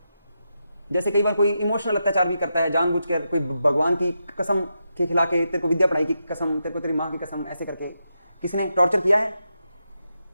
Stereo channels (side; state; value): both; inverted; correlation -0.86